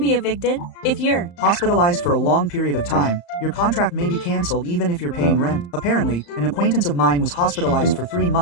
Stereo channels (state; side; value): late; right; 35 ms